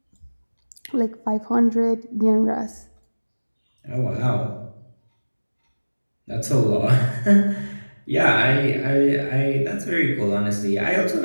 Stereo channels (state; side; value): inverted; both; correlation -1.00